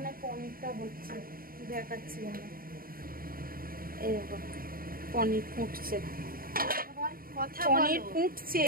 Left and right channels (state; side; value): late; left; 0.42 ms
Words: পনিরটা হচ্ছে, দেখাচ্ছি আমরা। এই দেখো পনির ফুটছে, পনির ফুটছে